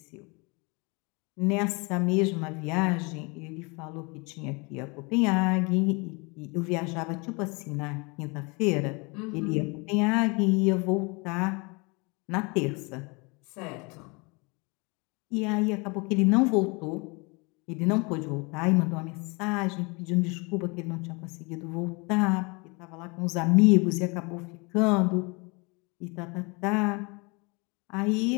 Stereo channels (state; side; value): quieter; right; 29.1 dB